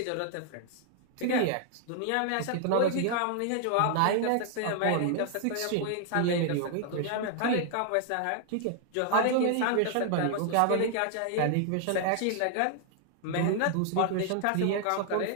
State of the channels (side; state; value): both; different; correlation 0.00